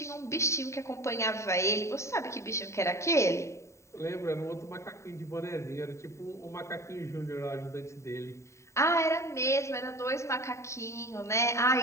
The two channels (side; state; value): right; late; 0.14 ms